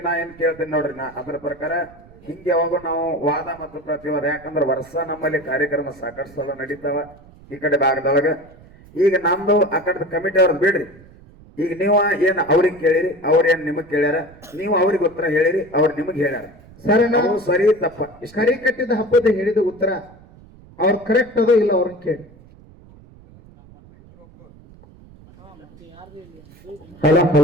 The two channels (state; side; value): noise; right; rumble, 23 dB below the sound